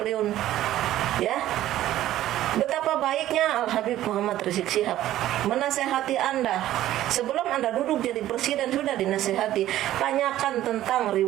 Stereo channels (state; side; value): quieter; left; 13.6 dB